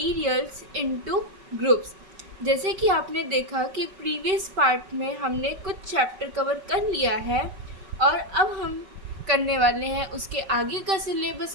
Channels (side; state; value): left; late; 5.3 ms